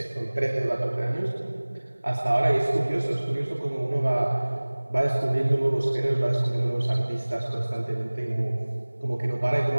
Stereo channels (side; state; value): both; inverted; correlation -1.00